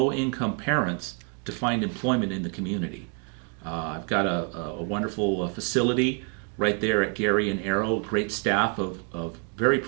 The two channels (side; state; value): left; quieter; 38.0 dB